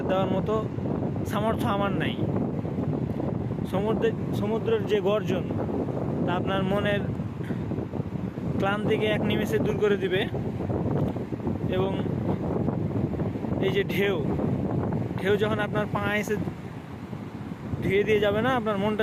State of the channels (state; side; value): identical; both; correlation 1.00